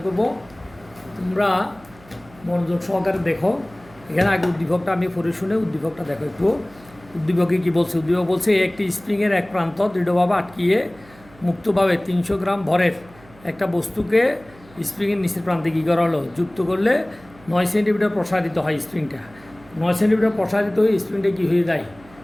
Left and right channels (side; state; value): right; noise; hum, 24 dB below the sound